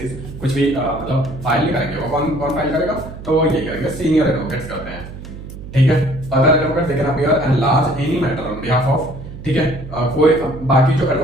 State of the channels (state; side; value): noise; right; hum, 12 dB below the sound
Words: कुछ भी मतलब फाइल नहीं करेंगे। वो कौन फाइल करेगा, तो ये करेंगे सीनियर एडवोकेट्स करते हैं, ठीक है। Other advocate they can appear and large any matter on behalf of, ठीक है। कोई बाकी जो